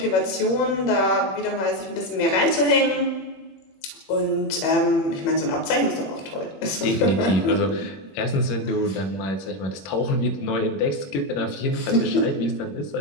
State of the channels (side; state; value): right; late; 21 ms